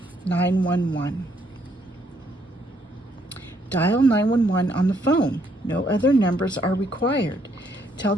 911. Dial 911 on the phone. No other numbers are required. Tell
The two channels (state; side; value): normal; both; correlation 0.71